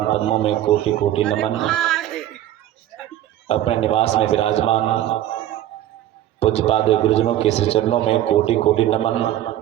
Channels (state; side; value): quieter; left; 12.7 dB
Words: पद्मों में कोटि कोटि नमन। अपने निवास में विराजमान पूज्यपाद गुरुजनों के श्री चरणों में कोटि कोटि नमन।